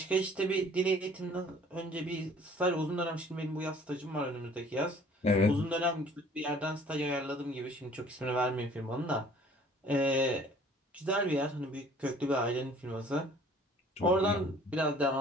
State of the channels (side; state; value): both; normal; correlation 0.54